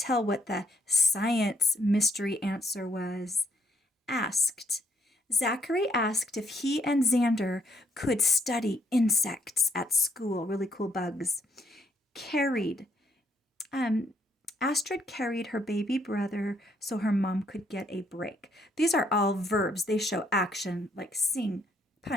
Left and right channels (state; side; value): normal; both; correlation 0.72